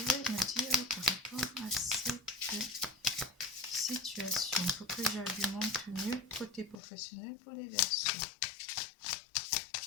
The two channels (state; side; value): drops out; right; at 6.8 s